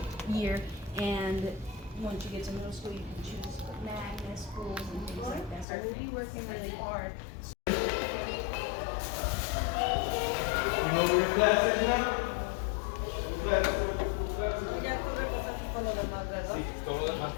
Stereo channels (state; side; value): drops out; right; at 5.7 s